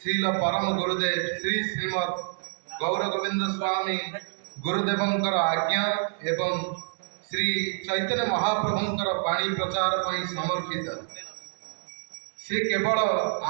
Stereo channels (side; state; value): left; silent; 60 dB below the other